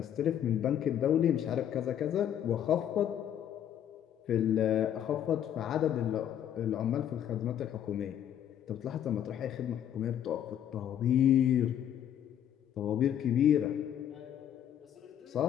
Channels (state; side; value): quieter; right; 10.1 dB